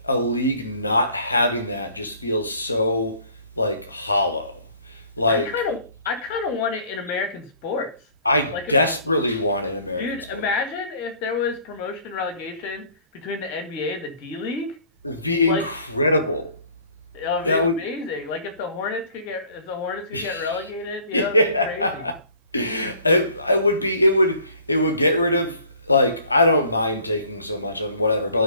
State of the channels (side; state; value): both; inverted; correlation -0.55